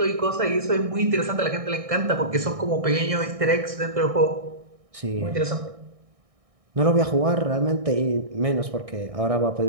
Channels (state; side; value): late; left; 1.6 ms